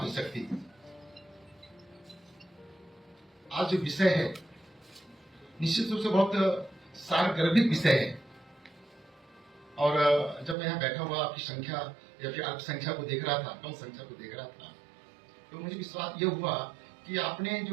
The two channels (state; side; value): drops out; left; at 10.6 s